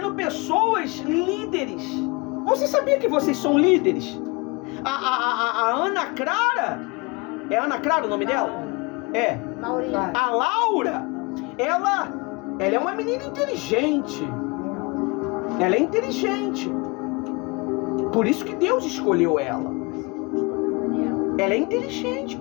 pessoas líderes. Você sabia que vocês são líderes? A Ana Clara, é Ana Clara o nome dela? É. A Laura, ela é uma menina inteligente. Ela é inteligente. Por isso que Deus escolheu ela. Ela é inteligente,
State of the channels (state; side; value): quieter; right; 27.4 dB